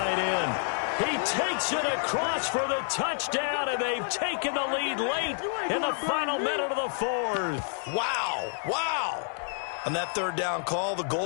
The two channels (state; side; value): silent; right; 59 dB below the other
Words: end. He takes it across for the touchdown, and they've taken the lead late in the final minute of the 4th. Wow. On that 3rd down call, the